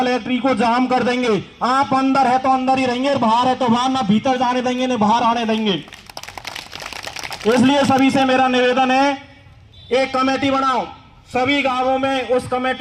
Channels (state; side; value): identical; both; correlation 1.00